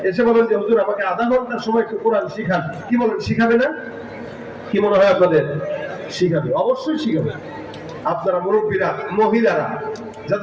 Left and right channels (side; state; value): both; identical; correlation 1.00